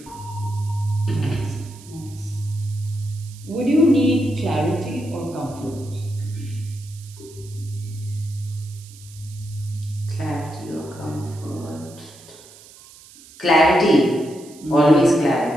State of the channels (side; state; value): right; noise; hiss, 21 dB below the sound